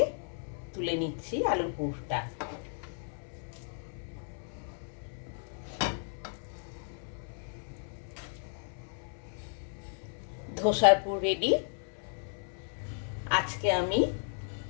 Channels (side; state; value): right; silent; 55 dB below the other